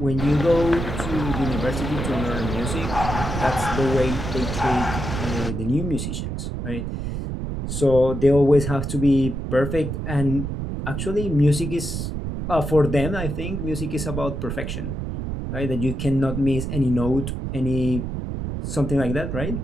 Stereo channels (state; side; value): noise; right; rumble, 4 dB below the sound